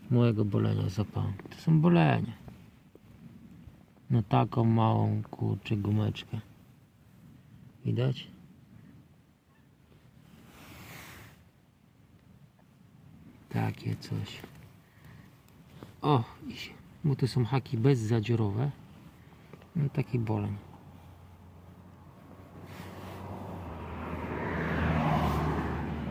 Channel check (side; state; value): both; identical; correlation 1.00